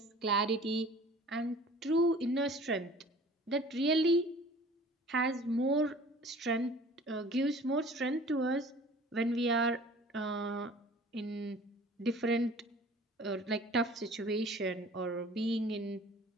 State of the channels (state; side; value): normal; both; correlation 0.47